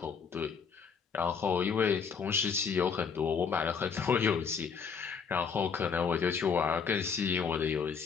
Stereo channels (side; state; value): right; quieter; 6.2 dB